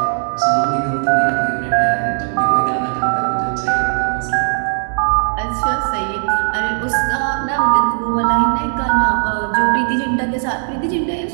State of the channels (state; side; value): silent; left; 68 dB below the other